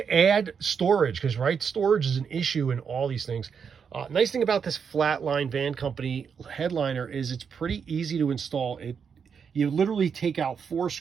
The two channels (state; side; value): quieter; left; 6.6 dB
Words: add storage, because storage is an issue in all these things. Nice thing about this Flatline van company headliner is it's pretty easy to install. You literally take out 4